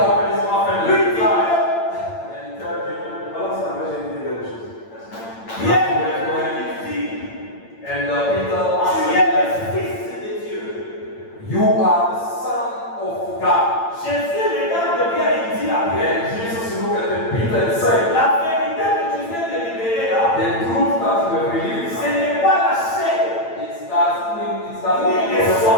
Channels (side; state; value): right; late; 8.8 ms